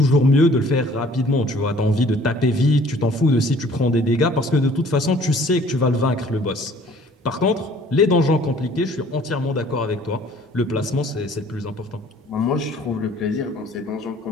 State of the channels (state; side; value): normal; both; correlation 0.54